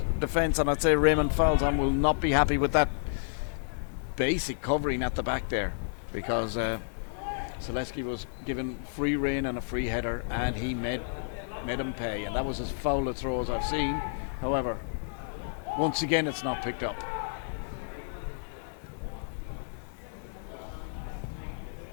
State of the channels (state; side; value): silent; right; digital silence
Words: defence, and I'd say Raymond Falzon will not be happy with that basic covering at the back there, because Zaleski was given free rein and a free header, and he made him pay, and that was as foul a throw as I've seen. However, once again, it's not picked up.